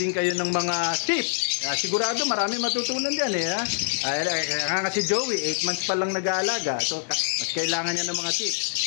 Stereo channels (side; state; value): right; silent; digital silence